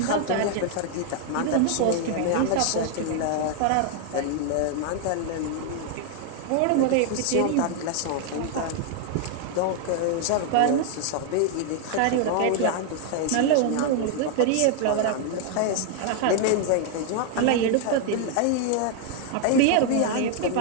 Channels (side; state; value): both; different; correlation 0.00